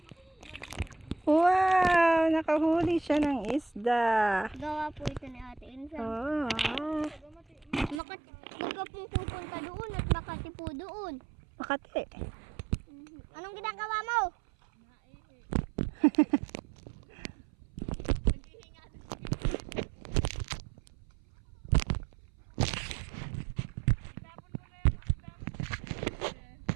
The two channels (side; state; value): left; drops out; at 8.0 s